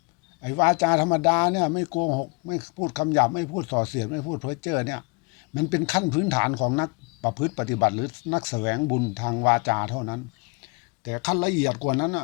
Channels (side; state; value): right; quieter; 30.1 dB